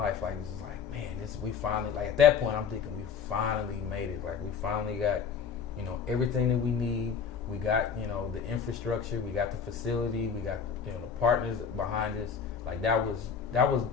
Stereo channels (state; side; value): quieter; right; 6.6 dB